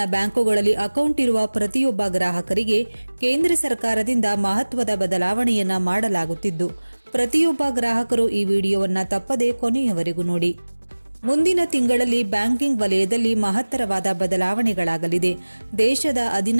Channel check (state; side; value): inverted; both; correlation -1.00